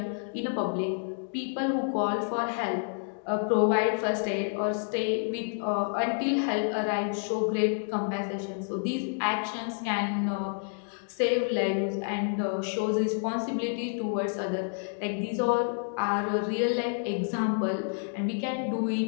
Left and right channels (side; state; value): right; silent; 58 dB below the other